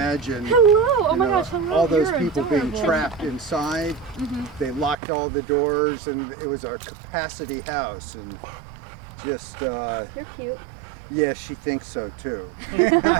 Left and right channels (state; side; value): drops out; left; at 5.0 s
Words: Hello! Oh you my know, gosh, hello! all those You're people adorable. being trapped inside. They locked all the doors, and it was a capacity house, and just You're cute. yeah, she thinks so too.